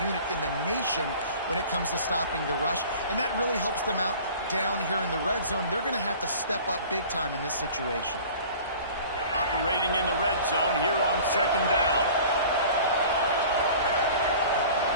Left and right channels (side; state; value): both; inverted; correlation -0.44